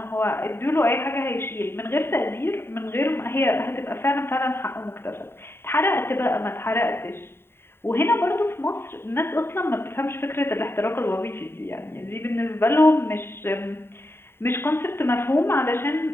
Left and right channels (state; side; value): late; right; 0.11 ms